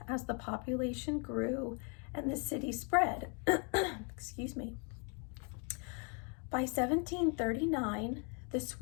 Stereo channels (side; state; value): right; quieter; 37.2 dB